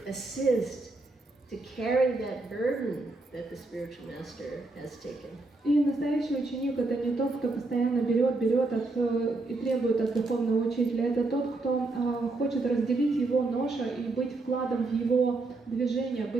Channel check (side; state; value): left; quieter; 3.2 dB